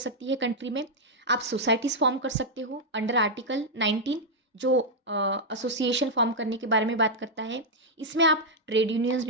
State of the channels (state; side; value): normal; both; correlation -0.03